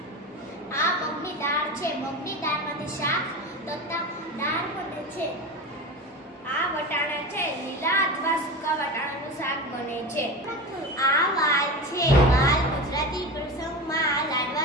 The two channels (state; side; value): normal; both; correlation 0.27